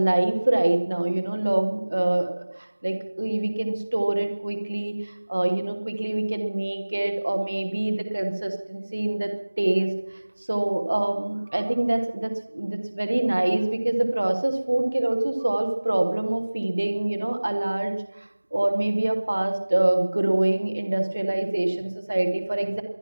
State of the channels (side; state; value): both; inverted; correlation -1.00